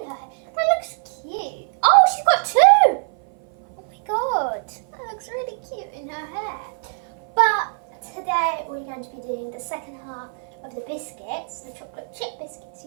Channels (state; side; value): silent; left; 56 dB below the other